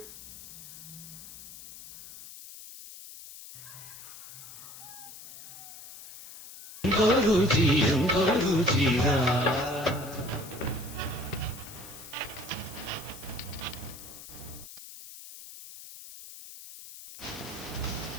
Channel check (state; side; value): noise; left; hiss, 15 dB below the sound